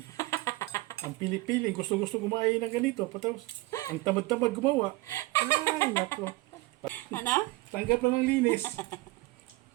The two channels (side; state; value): left; quieter; 21.1 dB